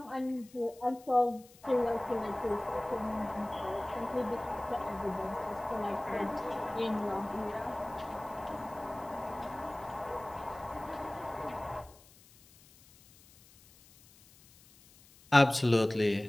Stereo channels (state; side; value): noise; left; hiss, 25 dB below the sound